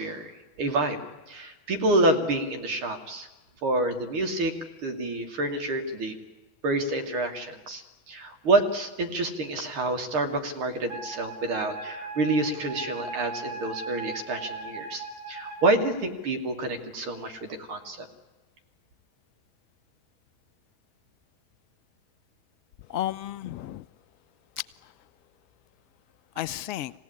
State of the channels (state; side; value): late; left; 5.5 ms